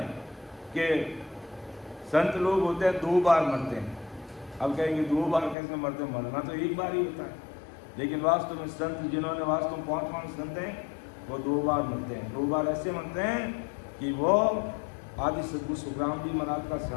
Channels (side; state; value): right; drops out; at 5.6 s